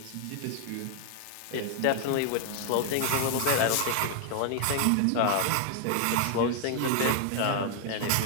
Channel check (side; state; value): both; different; correlation 0.00